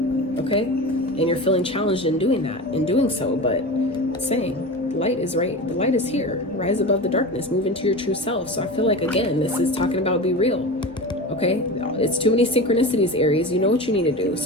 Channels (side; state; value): both; normal; correlation 0.29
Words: Okay? And you're feeling challenged in doing that, in doing so, but saying, light is right. The light is here. Rise above the darkness. Move into your true self. So I feel like, again, this is talking about be real. Okay? It's too many synchronicities, Aries. You know what you need to do.